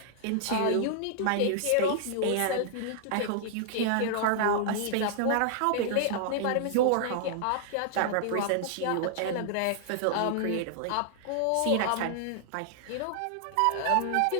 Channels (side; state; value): both; different; correlation -0.01